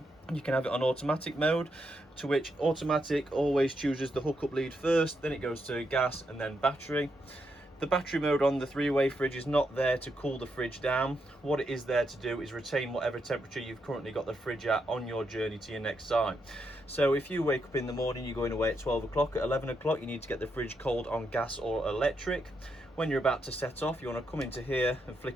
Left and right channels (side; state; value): both; normal; correlation 0.81